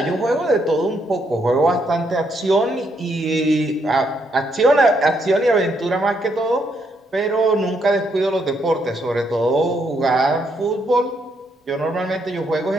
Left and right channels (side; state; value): both; normal; correlation 0.75